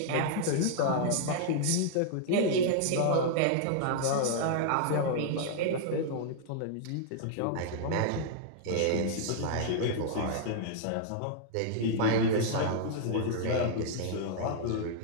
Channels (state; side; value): different; both; correlation -0.01